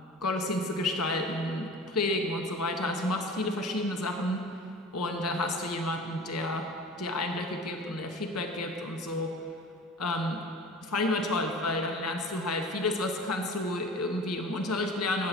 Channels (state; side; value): normal; both; correlation 0.39